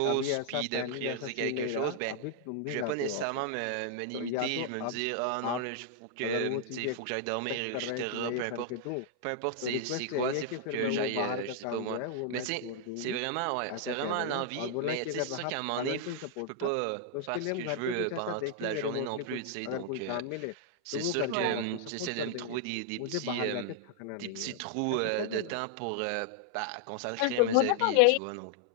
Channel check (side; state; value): both; different; correlation 0.00